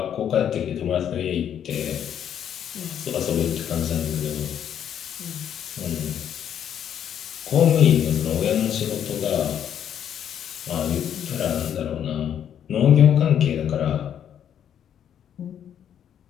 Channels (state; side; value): quieter; right; 9.4 dB